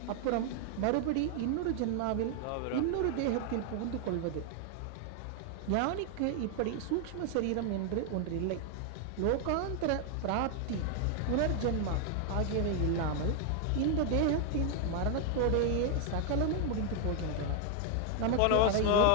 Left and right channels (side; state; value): both; different; correlation 0.00